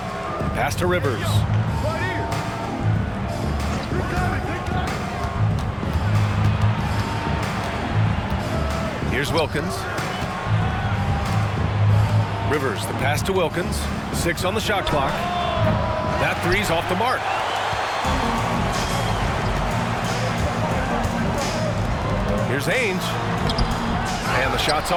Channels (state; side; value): identical; both; correlation 1.00